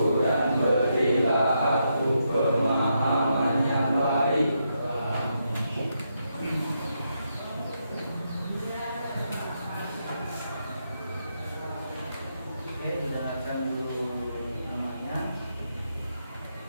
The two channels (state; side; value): inverted; both; correlation -0.81